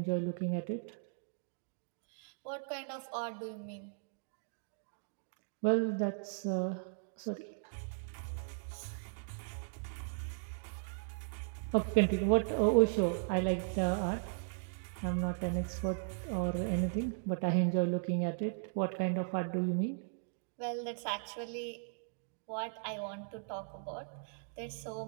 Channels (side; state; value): left; silent; digital silence